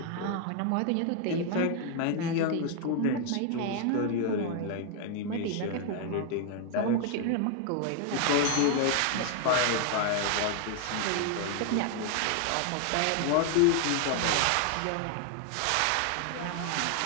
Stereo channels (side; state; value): both; different; correlation 0.00